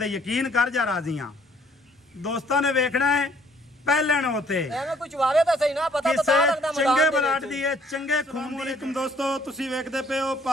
यकीन कर जा राजी हाँ। दोस्तों ने वेखना है ਪਹਿਲਣ ਹੋਤੇ ਐਵੇਂ ਕੁਝ ਵਾਵੇ ਤਾਂ ਸਹੀ ਨਾ ਪਤਾ ਤਾਂ ਲੱਗਦਾ ਚੰਗੇ ਬਲਾਟ ਦੀ ਹੈ ਚੰਗੇ ਖੂਨ ਦੀ। ਤੁਮ ਦੋਸਤੋ ਤੁਸੀਂ ਵੇਖਦੇ ਪਏ ਹੋ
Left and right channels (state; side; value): normal; both; correlation 0.62